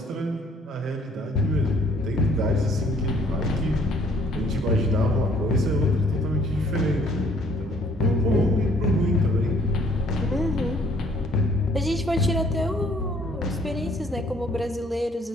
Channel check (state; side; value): normal; both; correlation 0.61